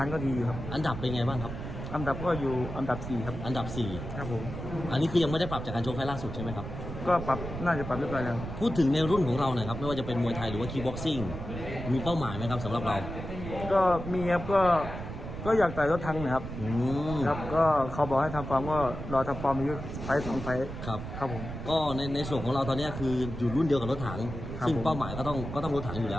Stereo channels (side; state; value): right; noise; rumble, 8 dB below the sound